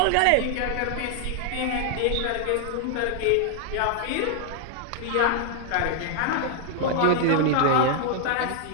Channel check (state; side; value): different; both; correlation 0.00